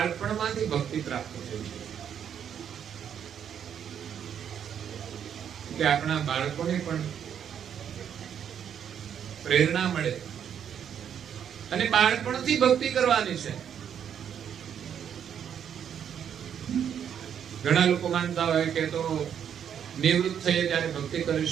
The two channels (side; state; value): left; quieter; 8.7 dB